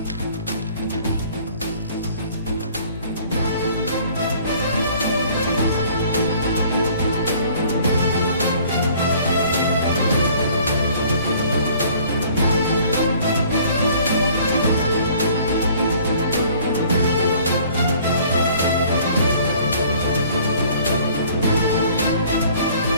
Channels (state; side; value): inverted; both; correlation -0.54